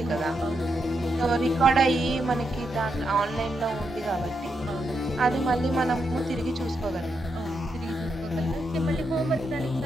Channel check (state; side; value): normal; both; correlation 0.82